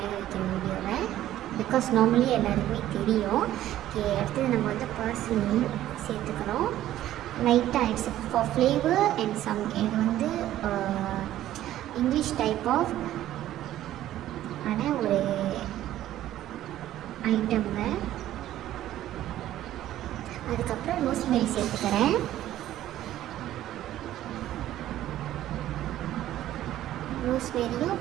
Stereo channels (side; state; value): left; quieter; 13.2 dB